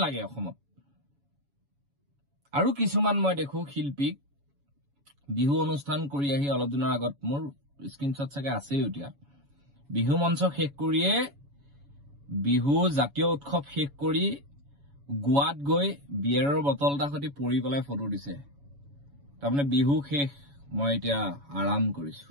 লাগে অসমত? আৰু কিছুমান মই দেখো শিল্পীক বিহু অনুষ্ঠান কৰি আহি অলপ দিনৰ আগত, মোৰ স্ক্ৰীনশ্বট চাগে আছেই এতিয়া, বিহু মঞ্চ শেষ কৰিয়ে, বিহু জাতীয় উৎসৱ শেষ কৰি গোৱাত গৈ বিয়েৰৰ বটল এটা সৈতে পৰি পেলাই ফটো দিছে। তাৰমানে বিহু শেষ, মই এতিয়া আৰাম কৰিছো।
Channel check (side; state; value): left; late; 7.1 ms